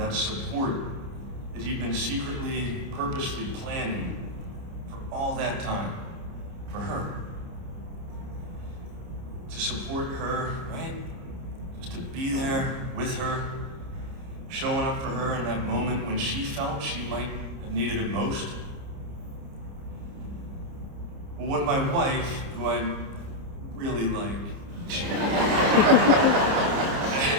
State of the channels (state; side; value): late; left; 29 ms